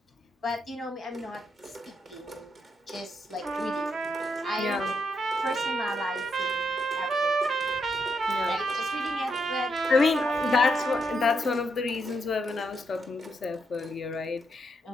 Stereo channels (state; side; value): normal; both; correlation 0.79